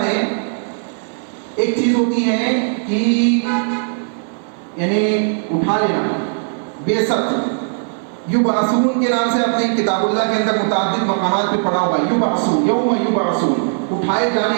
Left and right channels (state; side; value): silent; left; digital silence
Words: ہے ایک چیز ہوتی ہے کہ یعنی اٹھا لینا، بعثت، یبعثون کے نام سے اپنے کتاب اللہ کے اندر متعدد مقامات پہ پڑھا ہوگا. یبعثون، یوم یبعثون، اٹھائے